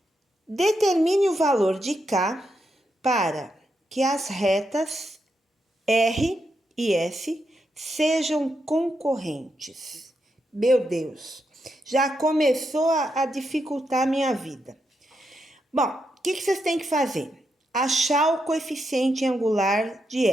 Determine o valor de K para que as retas R e S sejam concorrentes. Meu Deus, já começou a dificultar a minha vida. Bom, o que vocês têm que fazer? Achar o coeficiente angular de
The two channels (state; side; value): normal; both; correlation 0.83